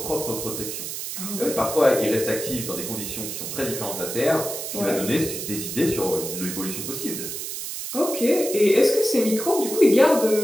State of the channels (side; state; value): right; noise; hiss, 6 dB below the sound